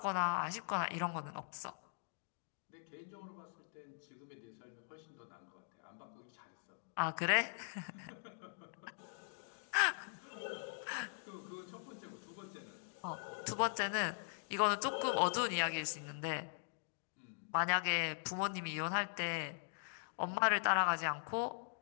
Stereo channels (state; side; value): silent; right; digital silence